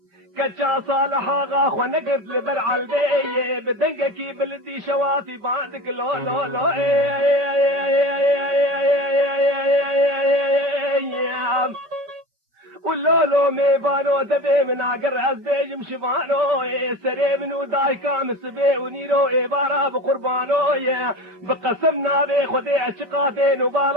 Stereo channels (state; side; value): late; left; 5.1 ms